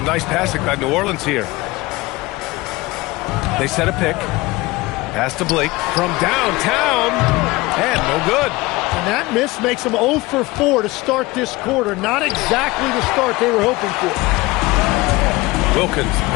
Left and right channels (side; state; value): right; quieter; 21.1 dB